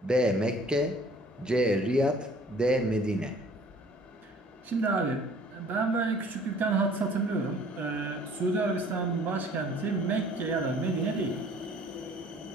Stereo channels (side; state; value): both; normal; correlation 0.53